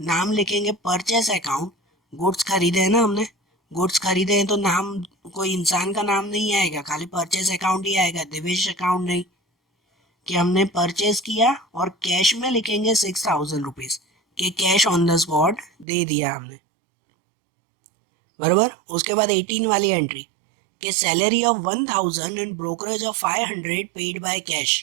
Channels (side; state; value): left; drops out; at 15.9 s